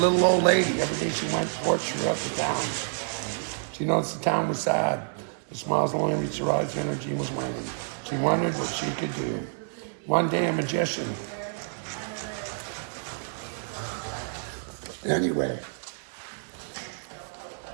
old lady. Every day she went forth throughout the town. She noticed the town was sad. The smiles only reached her eyes, her energy was waning. She wondered what she could do. One day, a magician. Anyway.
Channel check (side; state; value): left; silent; digital silence